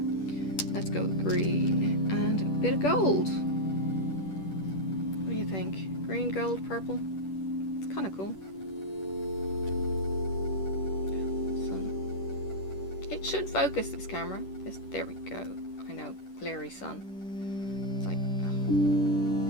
Let's go with green and a bit of gold. What do you think? Green, gold, purple? Kind of cool. Sun. It should focus, this camera. There we go. I know, glary sun. It's like,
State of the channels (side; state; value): right; late; 10 ms